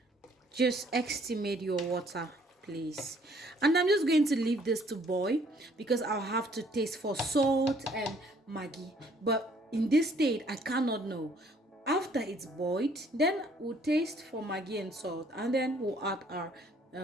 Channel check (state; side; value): normal; both; correlation 0.62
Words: Just estimate your water, please. And I'm just going to leave this to boil because I'll have to taste for salt and Maggi. But in this state, I cannot know. After it's boiled, then we'll taste for Maggi and salt, and then we'll add our